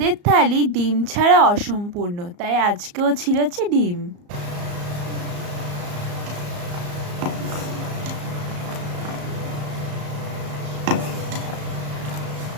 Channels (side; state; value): left; late; 34 ms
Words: থালি ডিম ছাড়া অসম্পূর্ণ, তাই আজকেও ছিল হচ্ছে ডিম।